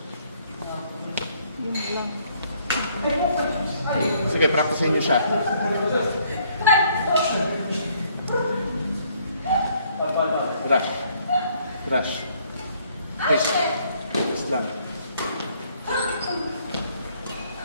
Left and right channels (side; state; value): both; inverted; correlation -0.66